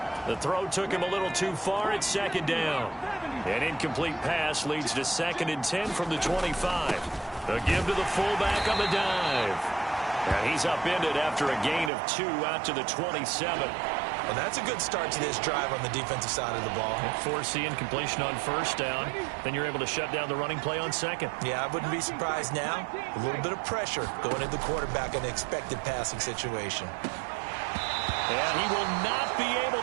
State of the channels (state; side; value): drops out; left; at 11.9 s